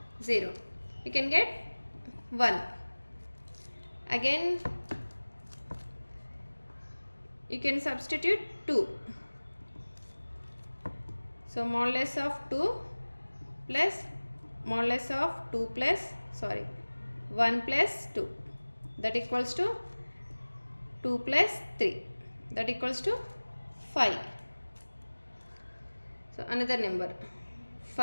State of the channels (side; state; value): both; inverted; correlation -1.00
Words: 0, you can get 1. Again you can substitute 2. So modulus of 2 plus modulus of 2 plus 1 plus 2, that equals to 2 plus 3, that equals to 5. So another number